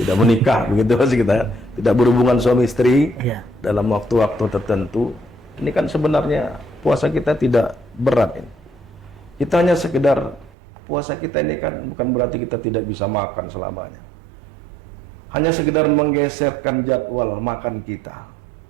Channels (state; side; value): drops out; left; at 10.6 s